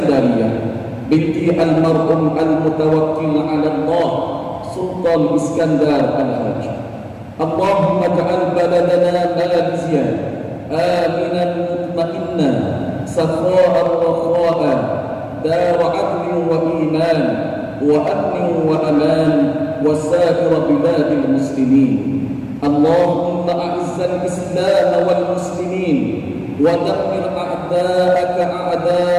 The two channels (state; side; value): identical; both; correlation 1.00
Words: binti almarhum al-mutawakkil ala Allah Sultan Iskandar al-Hajj. Allahumma ja'al baladana Malaysia aminan mutma'inna sakha'an wa kha'an dar 'adlin wa iman wa amnin wa aman wa sa'ir biladil muslimin. Allahumma a'izzal islam wal muslimin wa dammir a'da'aka